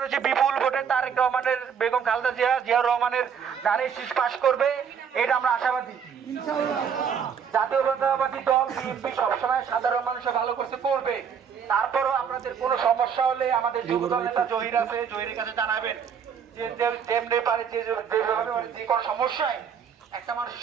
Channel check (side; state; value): left; quieter; 7.3 dB